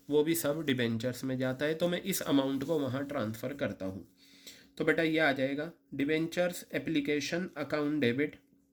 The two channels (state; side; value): identical; both; correlation 1.00